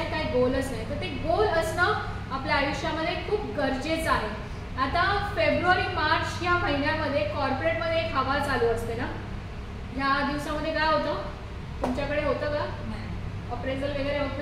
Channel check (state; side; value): identical; both; correlation 1.00